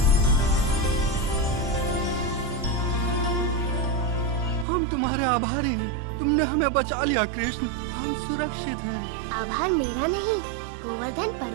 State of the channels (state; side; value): drops out; left; at 4.7 s